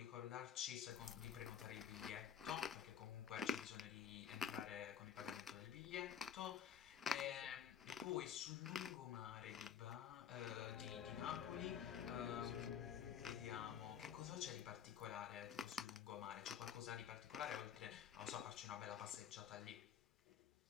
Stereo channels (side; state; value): right; quieter; 8.3 dB